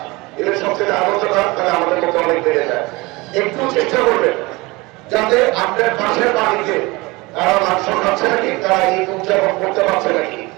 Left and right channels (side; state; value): left; quieter; 23.5 dB